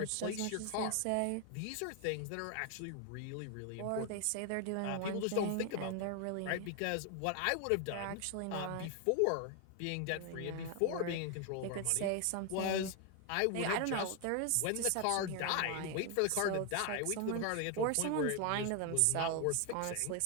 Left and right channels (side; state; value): both; different; correlation 0.01